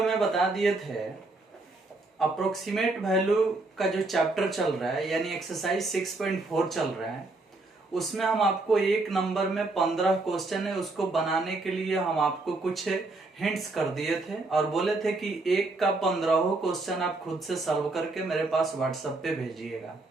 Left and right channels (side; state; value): left; quieter; 3.2 dB